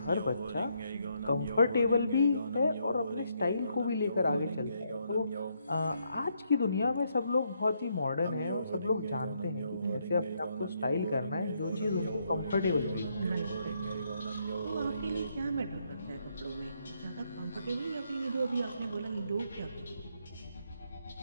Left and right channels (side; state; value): both; inverted; correlation -0.76